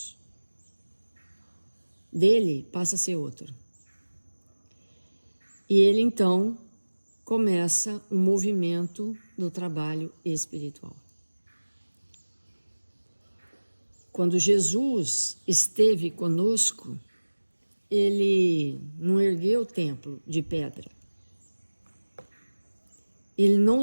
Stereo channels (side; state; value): both; inverted; correlation -1.00